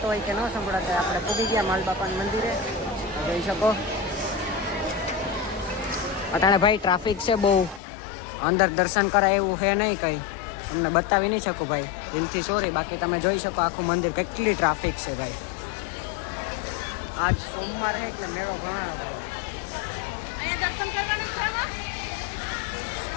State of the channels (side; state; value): right; drops out; at 7.8 s